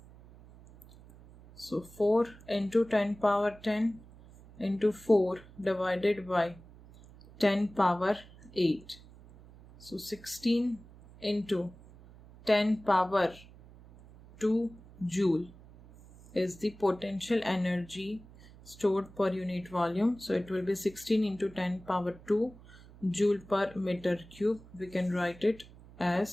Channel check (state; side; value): noise; right; hum, 21 dB below the sound